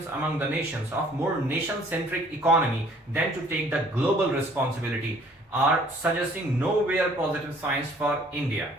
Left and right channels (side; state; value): both; normal; correlation 0.57